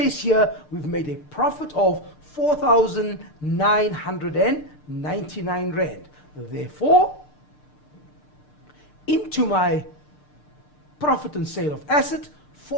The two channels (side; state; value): right; late; 6.7 ms